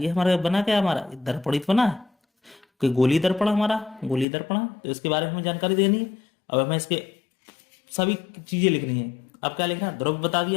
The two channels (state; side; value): drops out; right; at 4.2 s